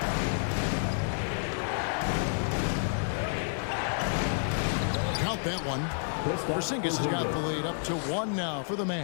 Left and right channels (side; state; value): right; silent; digital silence